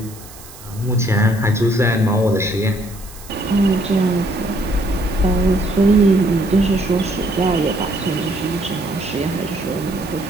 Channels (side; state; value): right; noise; hiss, 19 dB below the sound